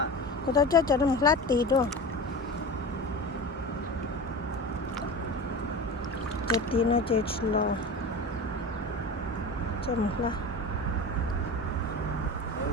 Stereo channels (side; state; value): both; normal; correlation 0.30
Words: Cô tôi cho nó một lát tí đó. Cho tí nó chỉ lo. Cho một lát.